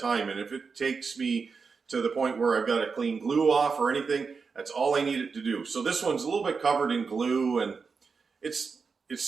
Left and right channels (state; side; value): quieter; left; 5.1 dB